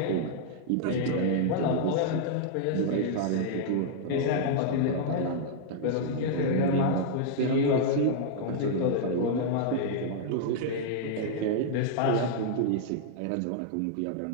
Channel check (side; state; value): both; different; correlation -0.01